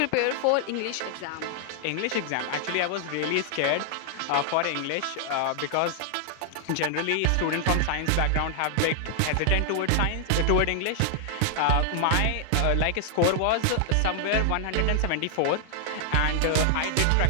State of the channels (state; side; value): different; both; correlation 0.00